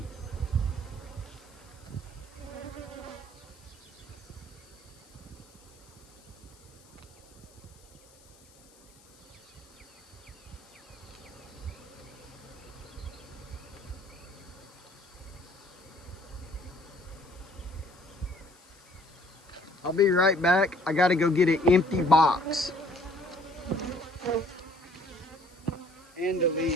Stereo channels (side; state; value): left; noise; hiss, 26 dB below the sound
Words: I'll be right back. I got to go get an empty box. and the